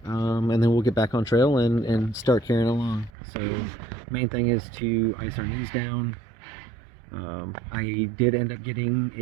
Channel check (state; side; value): drops out; left; at 3.1 s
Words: And then we'll get back on trail and start carrying along. So main thing is to ice our knees down. I did end up getting